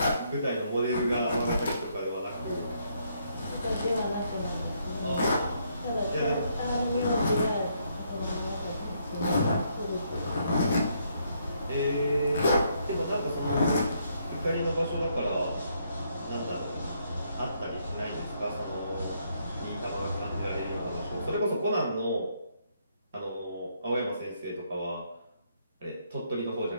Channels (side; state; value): both; inverted; correlation -0.73